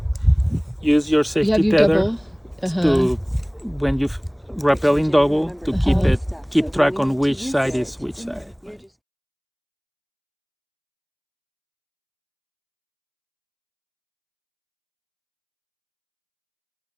use your You safety have your tether double. to, when you rappelling double, to keep track on which side is which side.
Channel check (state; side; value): identical; both; correlation 1.00